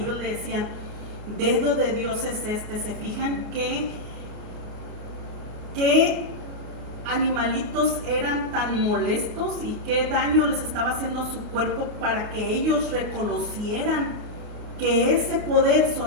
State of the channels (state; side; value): late; left; 29 ms